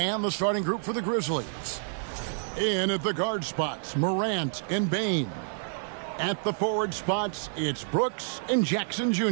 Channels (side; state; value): left; silent; digital silence